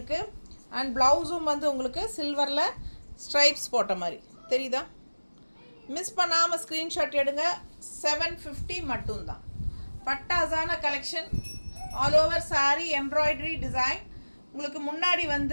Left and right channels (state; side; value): inverted; both; correlation -1.00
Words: அண்ட் ப்ளவுஸும் வந்து உங்களுக்கு சில்வரில் ஸ்ட்ரைப்ஸ் போட்ட மாதிரி தெரியுதா? மிஸ் பண்ணாமல் ஸ்க்ரீன்ஷாட் எடுங்க. 750 மட்டும்தான். பட்டாசான collection, all over sari embroidery design. உங்களுக்கு முன்னாடி